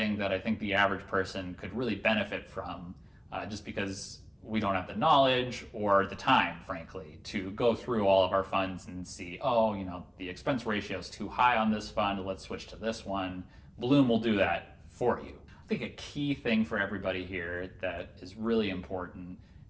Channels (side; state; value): both; identical; correlation 1.00